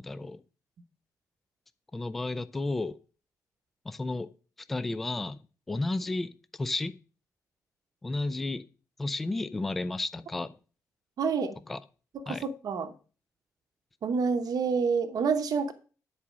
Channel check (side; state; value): both; normal; correlation 0.78